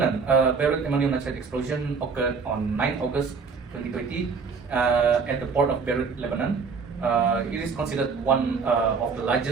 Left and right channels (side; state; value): left; quieter; 5.2 dB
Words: Beirut ammonium nitrate explosion occurred on 9 August 2020 at the port of Beirut, Lebanon. It is considered one of the